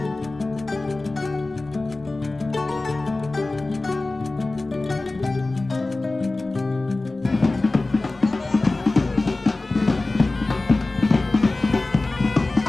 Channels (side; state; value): right; quieter; 3.1 dB